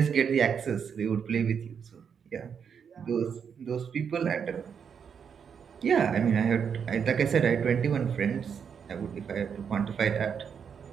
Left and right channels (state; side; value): quieter; left; 7.1 dB